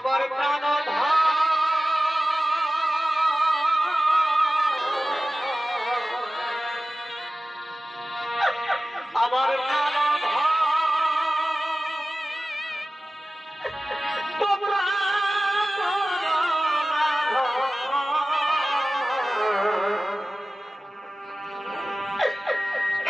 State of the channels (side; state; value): both; normal; correlation 0.96